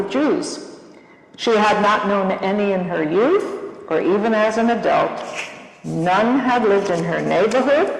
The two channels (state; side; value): identical; both; correlation 1.00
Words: Jews. She had not known any in her youth or even as an adult. None had lived in her neighborhood,